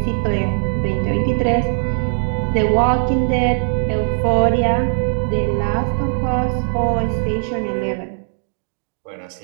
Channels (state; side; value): silent; left; digital silence